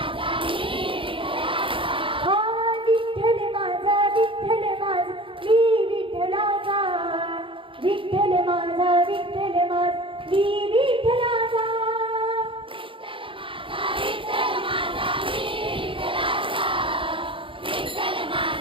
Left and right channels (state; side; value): late; left; 0.25 ms